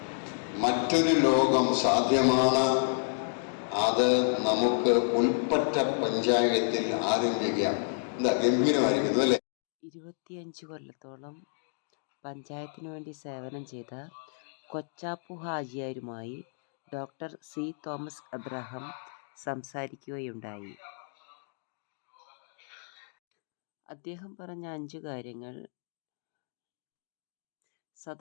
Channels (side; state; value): right; silent; digital silence